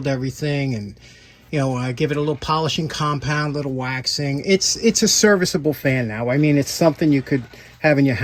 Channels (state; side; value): identical; both; correlation 1.00